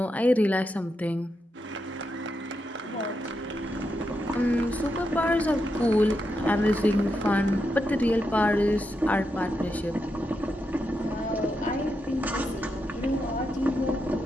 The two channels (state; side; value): normal; both; correlation 0.85